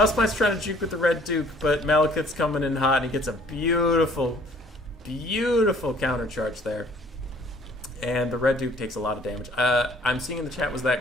trying to juke with the Red Duke, but Malekith's coming in hot, and he gets a beautiful, beautiful countercharge there. And the Red Duke takes a lot of damage. I'm seeing in the chat, was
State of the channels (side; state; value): both; normal; correlation 0.56